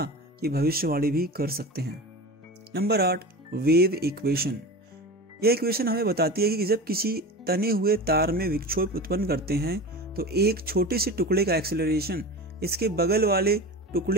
की भविष्यवाणी भी कर सकते हैं। Number 8, wave equation. यह इक्वेशन हमें बताती है कि जब किसी तने हुए तार में विक्षोभ उत्पन्न करते हैं तो एक छोटे से टुकड़े का एक्सेलरेशन इसके बगल वाले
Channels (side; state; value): both; normal; correlation 0.30